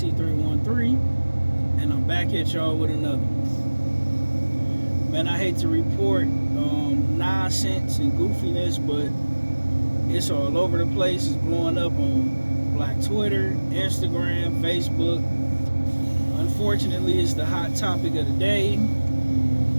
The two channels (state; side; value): inverted; both; correlation -1.00